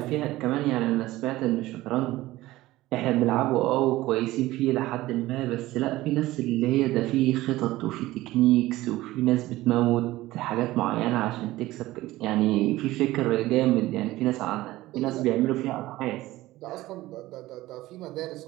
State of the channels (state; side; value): quieter; left; 17.2 dB